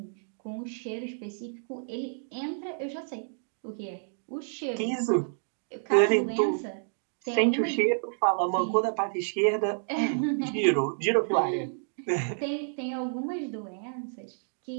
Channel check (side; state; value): left; silent; digital silence